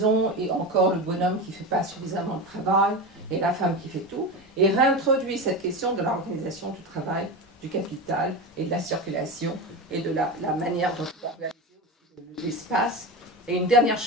et encore le bonhomme qui ne fait pas suffisamment de travail, et la femme qui fait tout, et réintroduit cette question de l'organisation du travail, du capital, et de la circulation, et de la manière dont on va organiser l'espace. Et une dernière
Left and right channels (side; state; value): both; normal; correlation 0.22